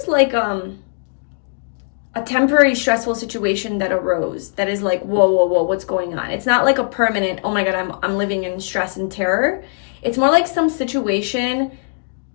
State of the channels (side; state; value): right; silent; digital silence